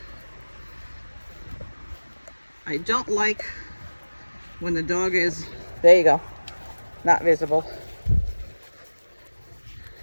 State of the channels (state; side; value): inverted; both; correlation -1.00